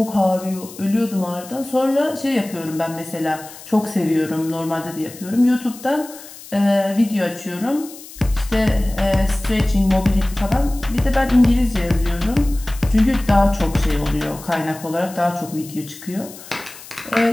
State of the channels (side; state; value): left; noise; hiss, 17 dB below the sound